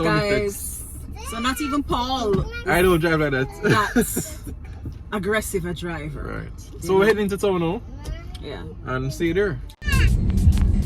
guys. effects. So not even Paul. I don't drive like that. That's aggressive a driver. Right. So we're heading to town now Yeah. and see you there.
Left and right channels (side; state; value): both; identical; correlation 1.00